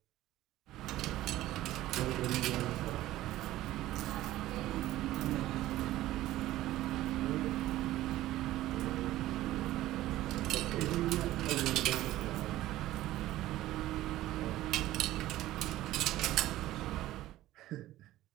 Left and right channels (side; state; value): left; quieter; 15.3 dB